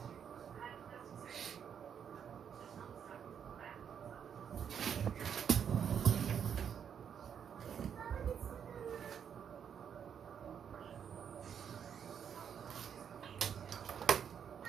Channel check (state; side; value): quieter; left; 8.0 dB